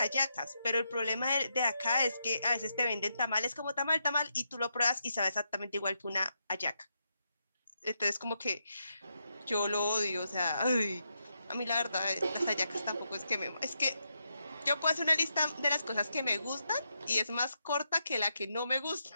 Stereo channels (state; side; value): inverted; both; correlation -0.83